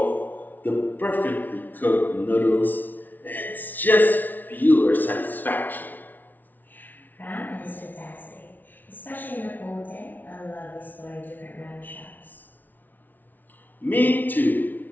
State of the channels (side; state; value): right; late; 0.083 ms